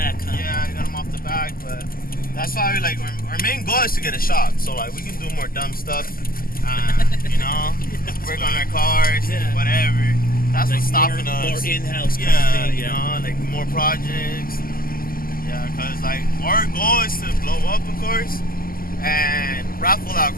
huh? Yeah, I got them off the back, but that's why we our main goal is to get a shop, so like we can do more dumb stuff, work on our cars, Yeah. whatever. That's Like what's stopping more, us. More in-house kind Yeah, of thing. like more projects. Yeah, cause like our goal is to blow up, of course, and raffle out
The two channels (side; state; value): right; late; 0.42 ms